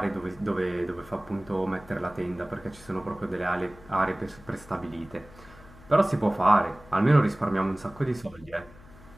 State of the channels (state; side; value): noise; left; hum, 21 dB below the sound